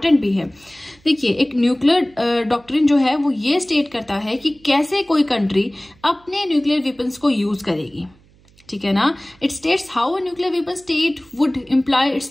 भी है। देखिए एक न्यूक्लियर डॉक्ट्रिन जो है वो ये स्टेट करता है कि कैसे कोई कंट्री अपने न्यूक्लियर वेपन्स को यूज करेगी, ठीक है ना। It states how a nuclear weapon state would employ its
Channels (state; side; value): noise; right; hum, 30 dB below the sound